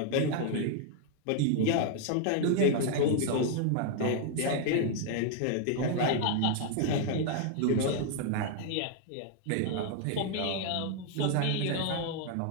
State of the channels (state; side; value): different; both; correlation 0.00